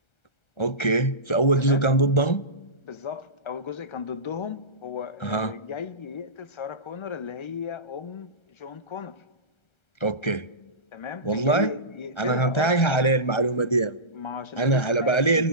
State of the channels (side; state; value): right; late; 1.3 ms